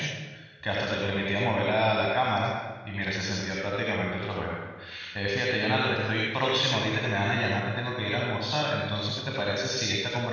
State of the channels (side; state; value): both; identical; correlation 1.00